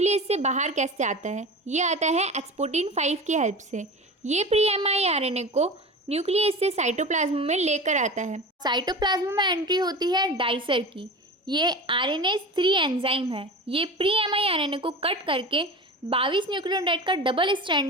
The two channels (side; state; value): both; normal; correlation 0.32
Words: से बाहर कैसे आता है? ये आता है एक्सपोर्टिन 5 की हेल्प से। ये प्री mRNA को न्यूक्लियस से साइटोप्लाज्म में लेकर आता है। साइटोप्लाज्म में एंट्री होती है डाइसर की। ये RNase 3 एंजाइम है। ये प्री mRNA को कट करके 22 न्यूक्लियोटाइड का डबल